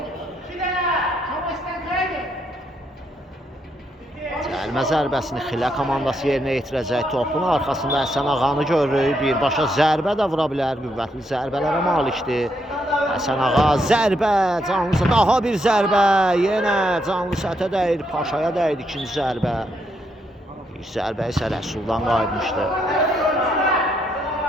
Cəlmə zərbəsini Xilə komandası yerinə yetirəcək. Topun arxasında Həsən Ağanı görürük. Birbaşa zərbə də vura bilər. Qüvvətli zərbələrə malikdir. Həsən Ağa zərbə, canlı daha bir zərbə. Yenə canlı sətə dəyir, Paşaya dəydi ikinci zərbə. İlk zərbə isə Rəsuldan qayıtmışdı.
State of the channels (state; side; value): normal; both; correlation 0.77